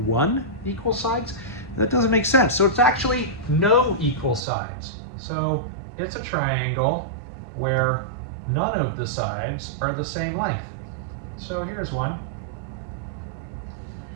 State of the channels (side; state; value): left; drops out; at 4.4 s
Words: 1 equal sides. That doesn't make sense. So it's actually no equal sides. So it's a triangle where none of the sides are the same length. So here's one.